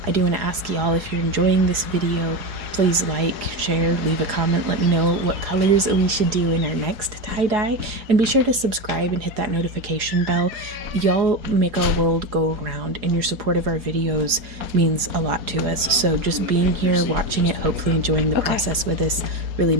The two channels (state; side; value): late; left; 4.8 ms